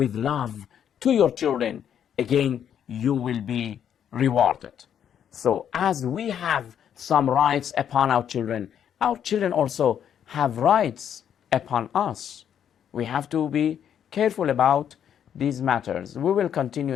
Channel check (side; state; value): right; quieter; 9.1 dB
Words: love to your children, again, you will be rewarded. So as we have some rights upon our children also have rights upon us. We have to be careful about these matters. We will continue,